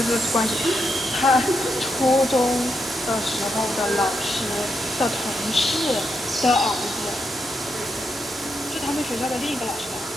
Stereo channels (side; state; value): both; normal; correlation 0.82